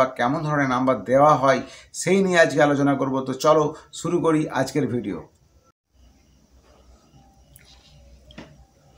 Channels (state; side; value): identical; both; correlation 1.00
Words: কেমন ধরনের নাম্বার দেওয়া হয় সেই নিয়ে আজকে আলোচনা করব। তো চলো শুরু করি আজকের ভিডিও।